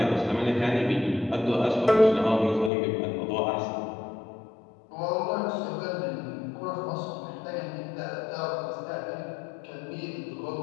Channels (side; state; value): right; drops out; at 2.7 s